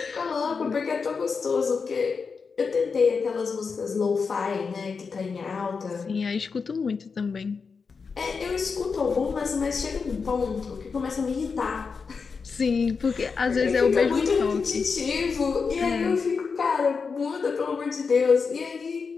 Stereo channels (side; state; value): right; quieter; 5.2 dB